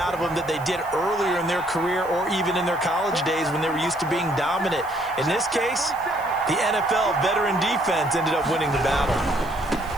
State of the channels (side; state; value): right; noise; hiss, 22 dB below the sound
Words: of them that they did earlier in their career or even in their college days when they were used to being dominant. In this case, the NFL veteran defense ended up winning the battle.